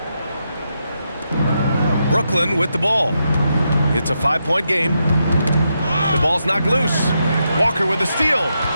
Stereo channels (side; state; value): both; inverted; correlation -0.84